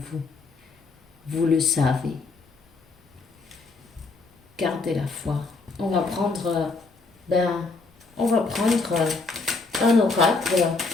Vous le savez. Gardez la foi. On va prendre, un oracle,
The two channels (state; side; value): quieter; right; 3.9 dB